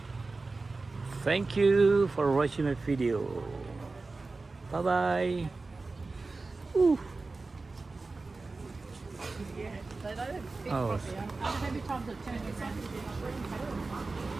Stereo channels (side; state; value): left; quieter; 3.7 dB